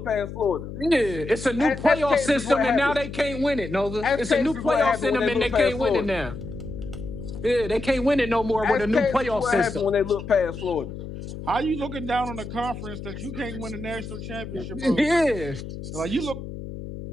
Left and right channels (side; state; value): left; noise; hum, 10 dB below the sound